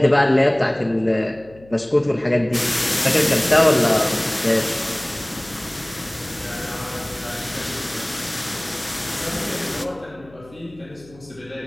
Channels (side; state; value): left; noise; hum, 24 dB below the sound